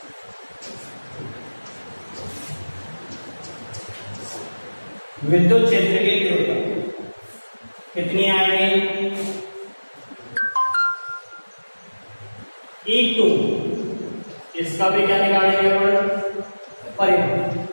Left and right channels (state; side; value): inverted; both; correlation -1.00